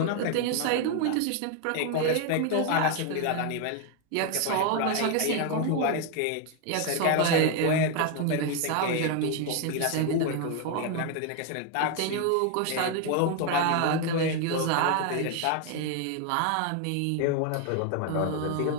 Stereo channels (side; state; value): both; different; correlation 0.01